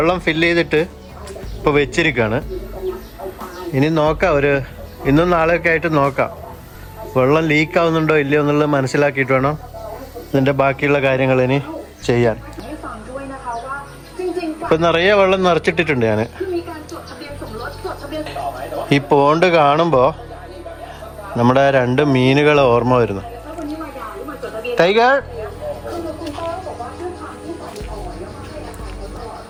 ഫില്ല് ചെയ്തിട്ട് ഇപ്പോൾ വെച്ചിരിക്കുകയാണ്. ഇനി നോക്കാം, ഇന്നും നാളെയൊക്കെ ആയിട്ട് നോക്കാം വെള്ളം ലീക്ക് ആവുന്നുണ്ടോ ഇല്ലയോ എന്നുള്ളത് മനസ്സിലാക്കിയിട്ട് വേണം ഇതിൻ്റെ ബാക്കിയുള്ള കാര്യങ്ങൾ ഇനി ചെയ്യാൻ. ഇപ്പം നിറയെ വെള്ളം നിറച്ചിട്ടിട്ടുണ്ട് ഞാൻ. ഈ പോണ്ട് കാണുമ്പോൾ നമ്മുടെ 2 മീനുകൾ ഓർമ്മ വരുന്നു. ടൈഗർ,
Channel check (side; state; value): both; identical; correlation 1.00